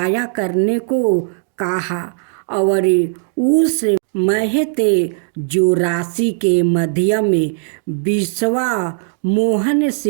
करने को कहा और उस महते जो राशि के मध्य में विश्वा मोहन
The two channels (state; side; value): silent; left; digital silence